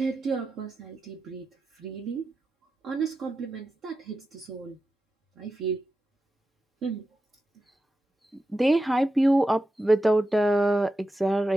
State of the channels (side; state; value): both; normal; correlation 0.91